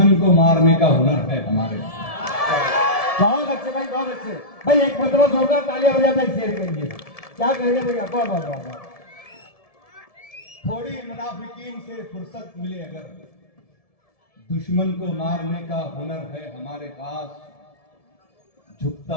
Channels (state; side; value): late; right; 1.7 ms